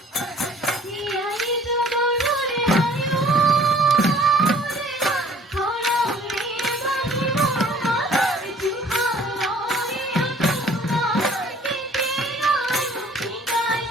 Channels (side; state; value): both; normal; correlation 0.55